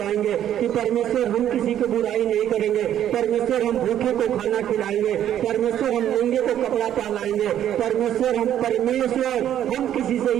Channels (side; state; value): left; quieter; 10.9 dB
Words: कि परमेश्वर हम किसी को बुराई नहीं करेंगे, परमेश्वर हम भूखे को खाना खिलाएंगे, परमेश्वर हम नंगे को कपड़ा पहनाएंगे, परमेश्वर हम किसी से